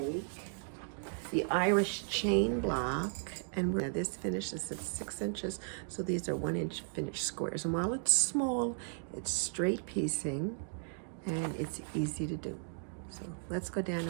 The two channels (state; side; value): silent; left; digital silence